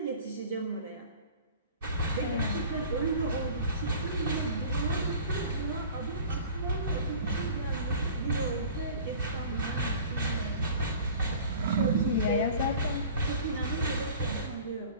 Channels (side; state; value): both; inverted; correlation -0.43